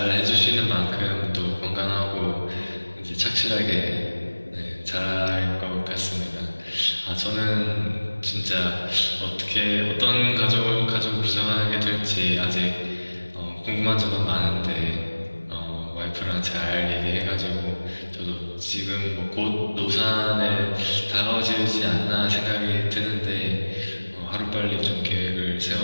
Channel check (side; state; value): both; inverted; correlation -1.00